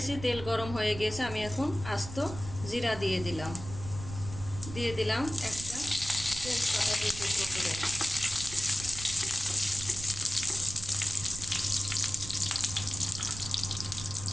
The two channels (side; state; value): right; noise; rumble, 11 dB below the sound